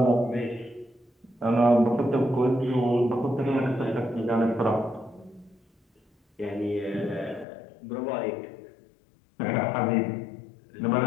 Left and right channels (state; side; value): drops out; right; at 7.5 s